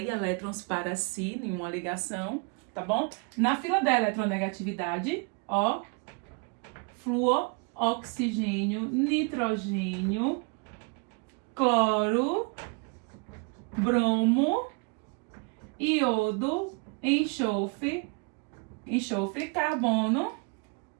elétrons para si em uma ligação, tá bom? Na fila da eletronegatividade, ó, flúor, oxigênio, nitrogênio, cloro, bromo, iodo, enxofre, carbono,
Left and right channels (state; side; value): quieter; left; 32.8 dB